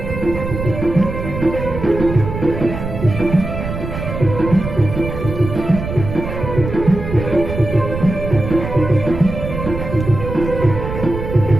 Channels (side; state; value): right; noise; rumble, 6 dB below the sound